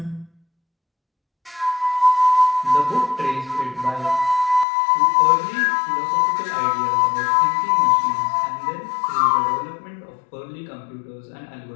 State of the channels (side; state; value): right; drops out; at 4.7 s